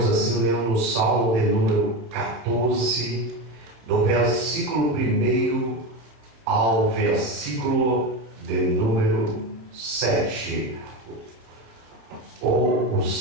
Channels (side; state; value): left; late; 26 ms